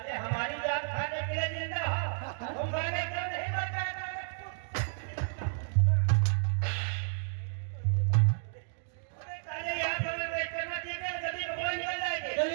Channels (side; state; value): left; silent; digital silence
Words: हमारी जान खाने के लिए जिंदा हो, तुम गाने क्यों नहीं बचा? साले यहाँ पर मैं वेट करना चाहिए, जल्दी भगवान निकल जाएंगे।